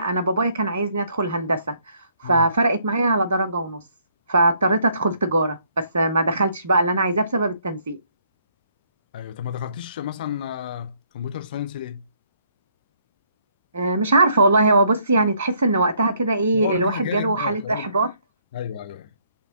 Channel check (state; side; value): inverted; both; correlation -0.68